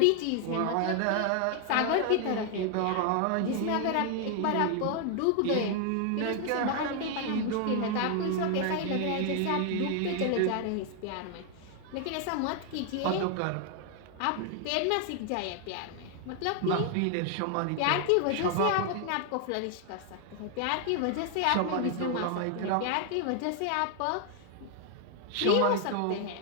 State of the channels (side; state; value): both; different; correlation 0.00